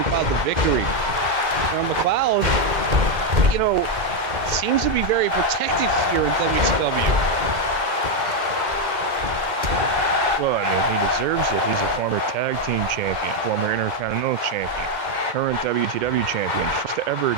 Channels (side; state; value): left; late; 2.1 ms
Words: the victory. Now McLeod, you know, seems to be very protected here in WTW. Well, I mean, he deserves it. He's a former tag team champion, former Intercontinental champion, current WTW champion, first ever